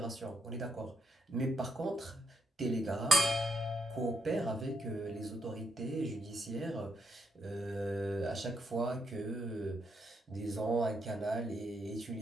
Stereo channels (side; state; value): both; normal; correlation 0.77